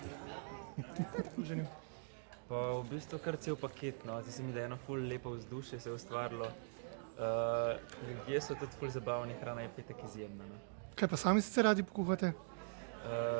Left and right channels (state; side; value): silent; left; digital silence